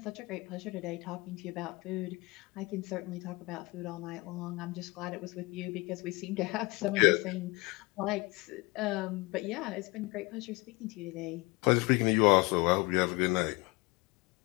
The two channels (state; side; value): quieter; right; 24.8 dB